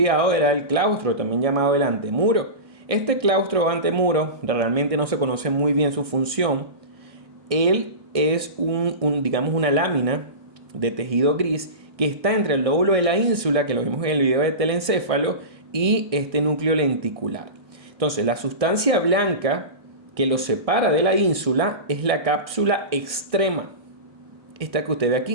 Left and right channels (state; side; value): late; left; 1.6 ms